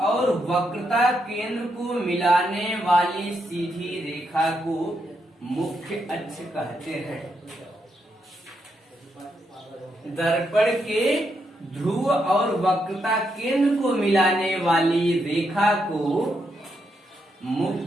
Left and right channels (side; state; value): both; normal; correlation 0.80